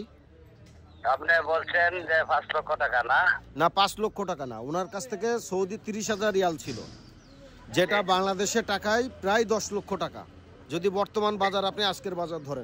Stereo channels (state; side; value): identical; both; correlation 1.00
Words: আপনি বলছেন যে 5 লক্ষ টাকা না? না, 5 লক্ষ টাকা না, ওনার কাছ থেকে সৌদি 30,000 রিয়াল ছিল, যেটা বাংলাদেশের টাকায় প্রায় 10 লক্ষ টাকা, যদি বর্তমান বাজার আপনি আজকের বাজার